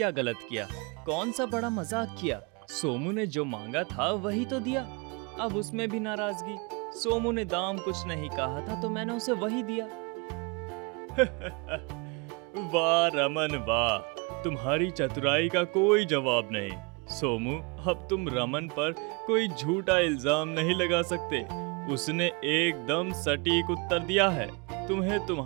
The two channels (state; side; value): quieter; left; 30.9 dB